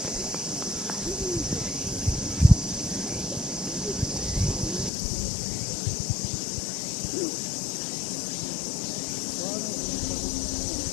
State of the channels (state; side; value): drops out; right; at 4.9 s